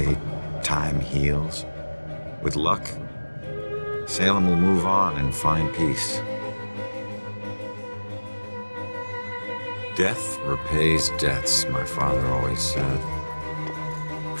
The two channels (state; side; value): inverted; both; correlation -1.00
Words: time heals. With luck, Salem will move on and find peace. Death repays debts, my father always said.